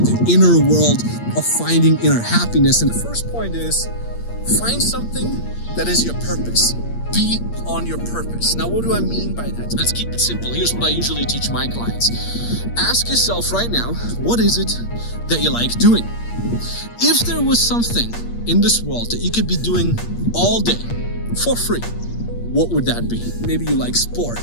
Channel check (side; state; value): right; late; 8.6 ms